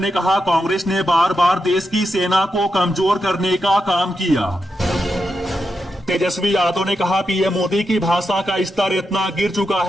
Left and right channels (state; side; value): normal; both; correlation 0.86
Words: कहा कांग्रेस ने बार बार देश की सेना को कमजोर करने का काम किया। तेजस्वी यादव ने कहा पीएम मोदी की भाषा का स्तर इतना गिर चुका